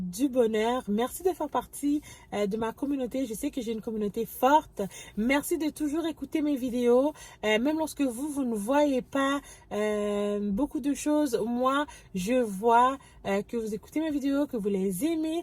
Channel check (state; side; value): identical; both; correlation 1.00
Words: bonheur. Merci de faire partie de ma communauté. Je sais que j'ai une communauté forte. Merci de toujours écouter mes vidéos. Même lorsque vous ne voyez pas beaucoup de choses, moi, je vois que vous écoutez mes vidéos, que vous les aimez.